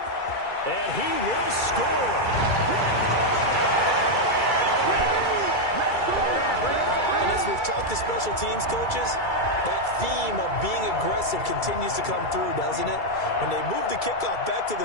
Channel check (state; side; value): late; right; 2.3 ms